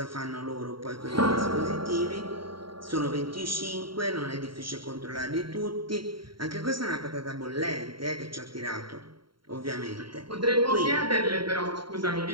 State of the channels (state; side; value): late; left; 0.73 ms